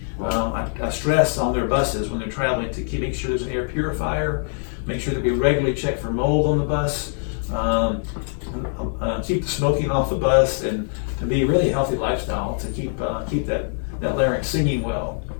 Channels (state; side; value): silent; right; 60 dB below the other